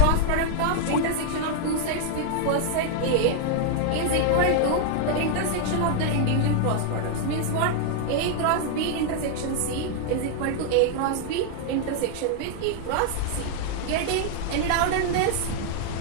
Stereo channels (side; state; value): both; different; correlation 0.00